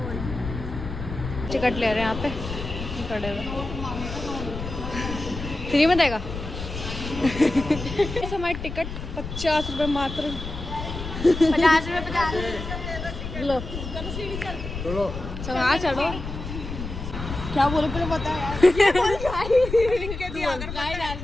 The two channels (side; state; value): left; noise; rumble, 8 dB below the sound